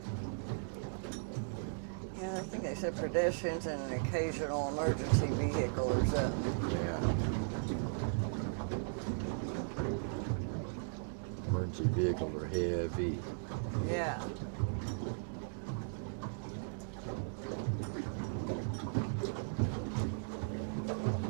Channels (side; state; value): left; silent; digital silence